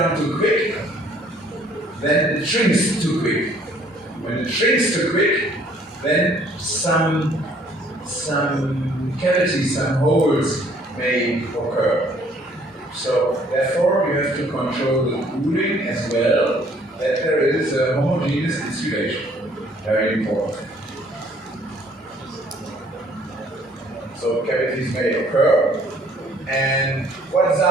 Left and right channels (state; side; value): normal; both; correlation 0.60